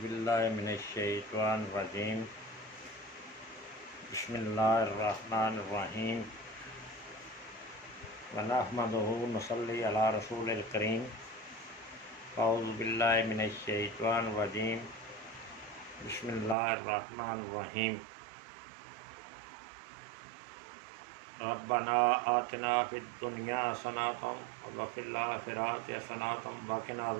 औज़ुबिल्लाहि मिनश्शैतानिर्रजीम बिस्मिल्लाहिर्रहमानिर्रहीम व नहमदुहु व नसल्ली अला रसूलिल करीम। औज़ुबिल्लाहि मिनश्शैतानिर्रजीम बिस्मिल्लाहिर्रहमानिर्रहीम। रब्बना आतिना फिद दुनिया हसनतम व फिल आखिरति हसनतम व क़िना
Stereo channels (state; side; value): drops out; left; at 16.6 s